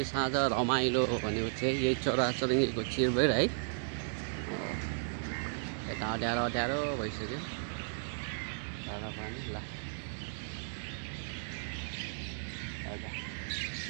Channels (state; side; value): silent; left; digital silence